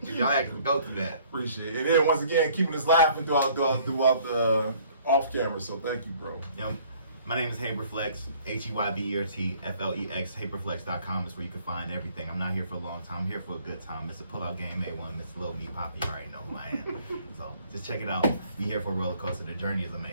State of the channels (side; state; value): both; inverted; correlation -0.58